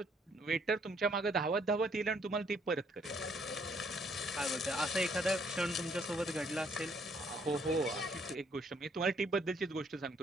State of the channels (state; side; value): normal; both; correlation 0.67